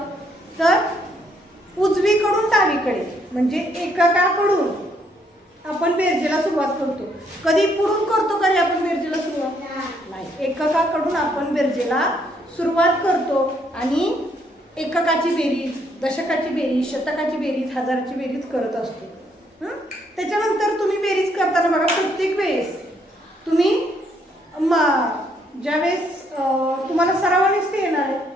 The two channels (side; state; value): both; normal; correlation 0.70